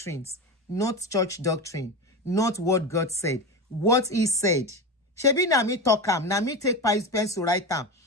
not church doctrine, not what God said, what he said. Shebi na me talk am, na me take pencil write am,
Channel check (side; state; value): both; normal; correlation 0.21